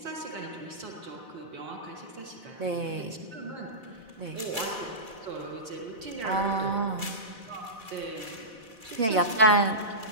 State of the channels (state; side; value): late; left; 4.1 ms